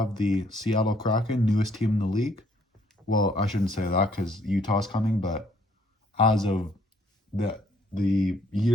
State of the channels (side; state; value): both; normal; correlation 0.65